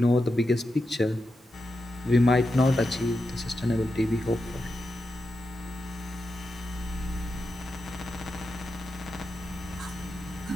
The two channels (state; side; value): normal; both; correlation 0.88